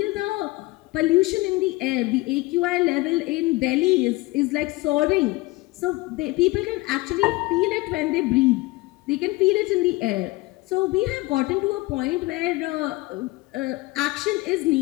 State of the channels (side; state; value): right; quieter; 21.5 dB